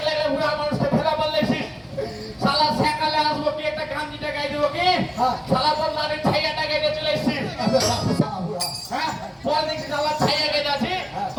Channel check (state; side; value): identical; both; correlation 1.00